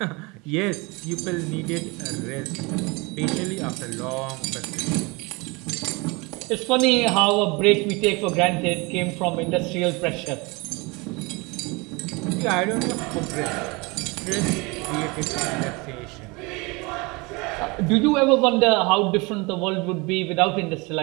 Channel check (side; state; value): left; quieter; 26.7 dB